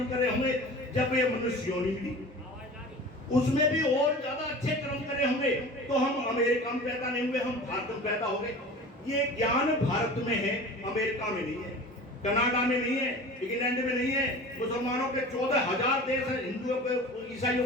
करे होंगे, जब ये मनुष्य योनि मिली उसमें भी और ज्यादा अच्छे कर्म करे होंगे, तो हम अमेरिका में पैदा नहीं हुए, हम भारत में पैदा हो गए। ये ज्ञान भारत में है, अमेरिका में नहीं है, कनाडा में नहीं है, इंग्लैंड में नहीं है, मुसलमानों के 14,000 देश हैं, हिंदुओं के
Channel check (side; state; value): both; normal; correlation 0.38